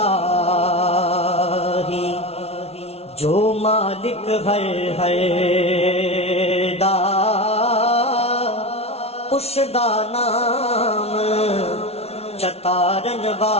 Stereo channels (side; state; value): right; late; 0.30 ms